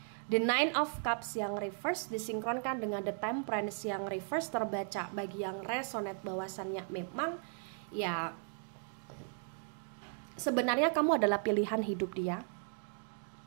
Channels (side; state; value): left; silent; 54 dB below the other